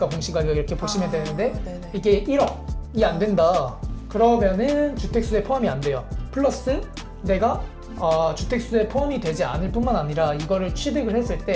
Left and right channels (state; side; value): identical; both; correlation 1.00